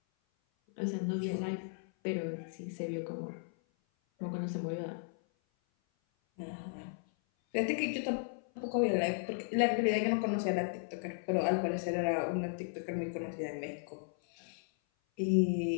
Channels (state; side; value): silent; right; 54 dB below the other